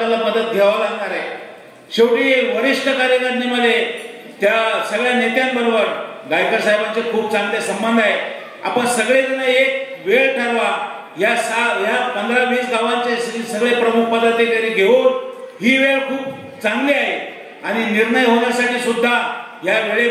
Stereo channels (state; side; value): identical; both; correlation 1.00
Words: मदत घ्यावी लागणार आहे. शेवटी वरिष्ठ कार्यकारिणीमध्ये त्या सगळ्या नेत्यांबरोबर गायकवाड साहेबांचे खूप चांगले संबंध आहे. आपण सगळेजण एक वेळ ठरवा, या 15-20 गावांचे सगळे प्रमुख पदाधिकारी घेऊन ही वेळ खूप चांगली आहे आणि निर्णय होण्यासाठी सुद्धा या